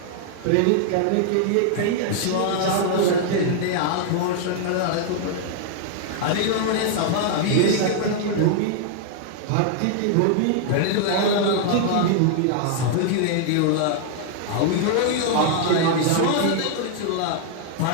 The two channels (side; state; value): both; different; correlation 0.00